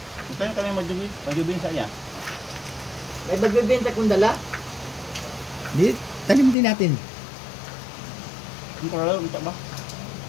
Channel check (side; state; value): right; drops out; at 6.6 s